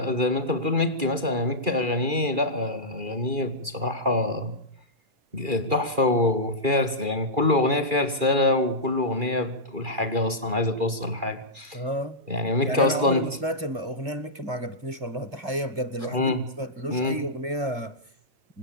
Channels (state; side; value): late; left; 2.4 ms